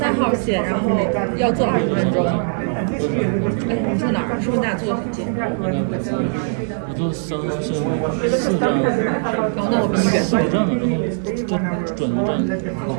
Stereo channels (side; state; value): left; silent; digital silence